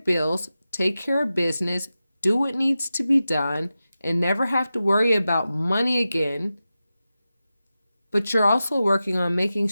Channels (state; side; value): inverted; both; correlation -0.93